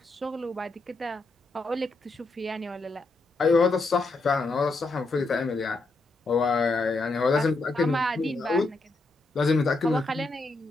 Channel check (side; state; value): right; quieter; 3.2 dB